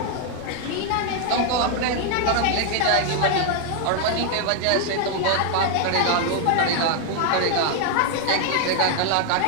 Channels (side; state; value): both; different; correlation 0.00